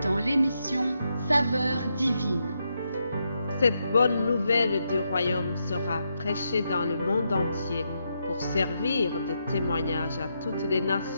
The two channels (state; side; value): inverted; both; correlation -0.82